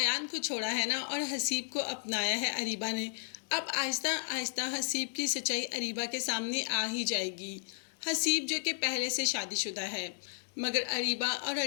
को छोड़ा है ना, और हसीब को अपनाया है अरीबा ने। अब आहिस्ता आहिस्ता हसीब की सच्चाई अरीबा के सामने आ ही जाएगी। हसीब जो कि पहले से शादीशुदा है, मगर अरीबा और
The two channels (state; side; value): silent; right; digital silence